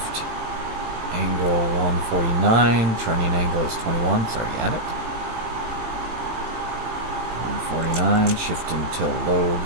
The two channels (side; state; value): left; late; 18 ms